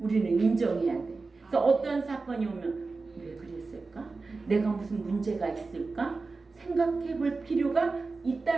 인정해야 돼. 그래서 어떤 사건이 오면 왜 그랬을까? 내가 무슨 문제가 있을까? 생각해 볼 필요가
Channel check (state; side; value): quieter; left; 3.9 dB